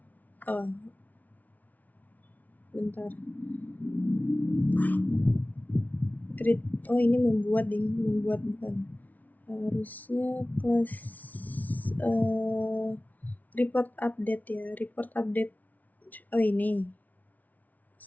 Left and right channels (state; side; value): late; right; 0.075 ms